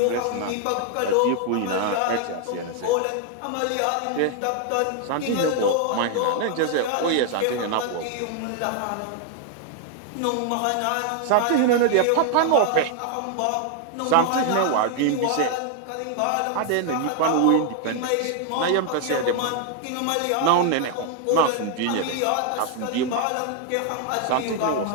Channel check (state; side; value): different; both; correlation 0.00